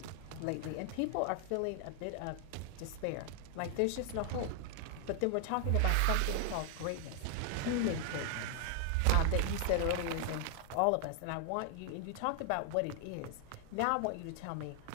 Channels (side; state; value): both; different; correlation 0.00